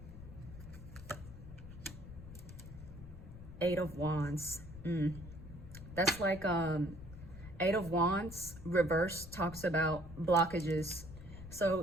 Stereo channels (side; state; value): left; noise; rumble, 13 dB below the sound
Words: Eight of Wands. That's like Eight of Wands reverse talks about blockages.